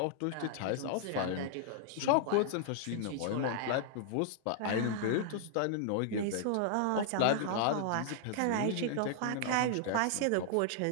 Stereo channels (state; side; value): different; both; correlation -0.01